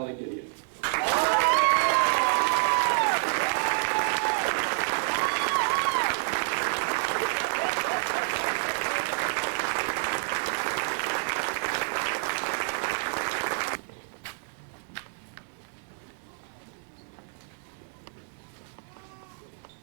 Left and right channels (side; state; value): left; silent; digital silence